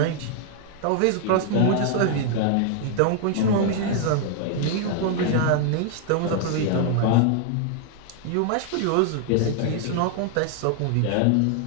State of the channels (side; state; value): both; different; correlation 0.00